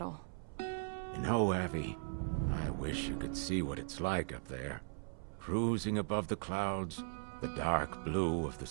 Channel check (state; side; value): silent; left; 52 dB below the other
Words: You know, Abby, I wish you could see what it's like up there. Cruising above the clouds, the dark blue of the